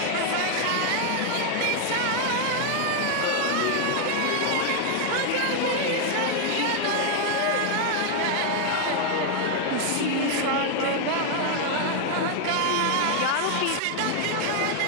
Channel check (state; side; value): different; both; correlation 0.00